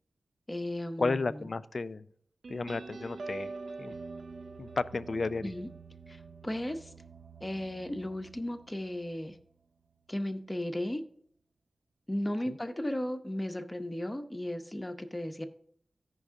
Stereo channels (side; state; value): both; normal; correlation 0.97